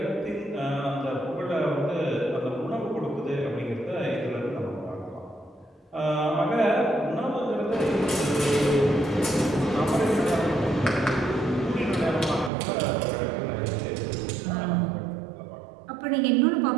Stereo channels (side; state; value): left; drops out; at 12.5 s